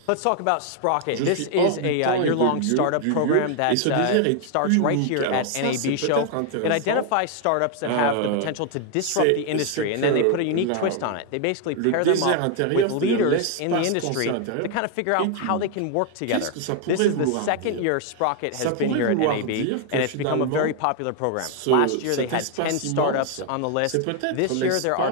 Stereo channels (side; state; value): both; different; correlation 0.00